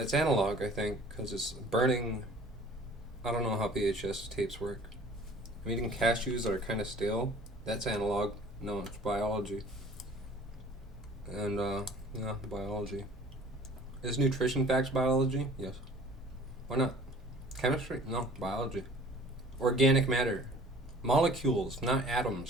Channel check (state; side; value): normal; both; correlation 0.49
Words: analog, I think, because it's burning. I don't know how VHS tapes work. I'm eating cashews that are kind of stale. That's analog. No, it's biology. And yeah, biology. Is nutrition facts biology? Yes. Why not? Chemistry? No, biology. Organic matter. Molecules, not